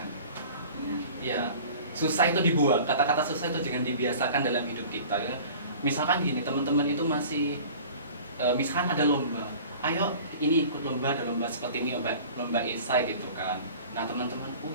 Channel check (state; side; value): inverted; both; correlation -0.43